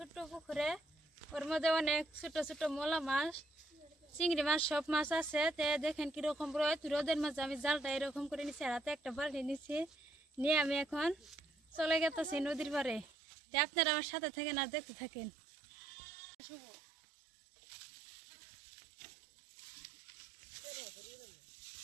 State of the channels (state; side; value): drops out; left; at 13.1 s